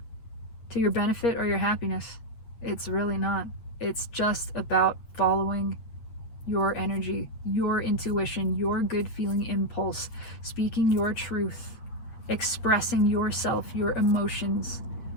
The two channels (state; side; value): late; right; 8.7 ms